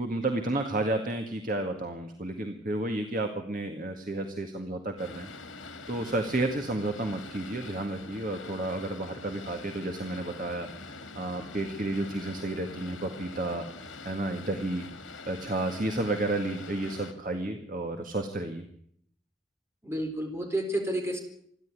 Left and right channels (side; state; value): both; normal; correlation 0.53